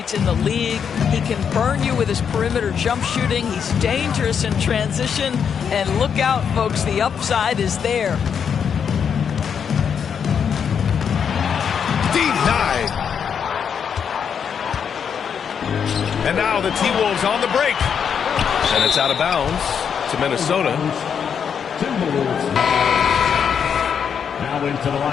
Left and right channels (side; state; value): right; quieter; 7.3 dB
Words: in the league. He can burn you with his perimeter jump shooting. He's dangerous in transition. And look out, folks, the upside is there. Denied. And now the T-Wolves on the break. And it's out of bounds to Minnesota. Timberwolves. Now into the